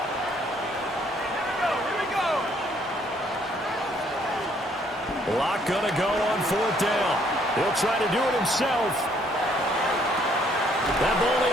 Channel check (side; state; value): both; normal; correlation 0.66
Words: Locke going to go on 4th down. He'll try to do it himself. That ball